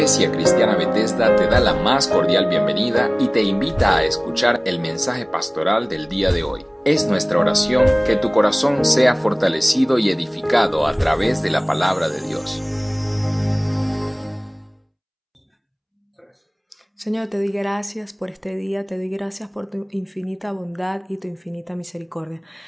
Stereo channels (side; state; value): both; identical; correlation 1.00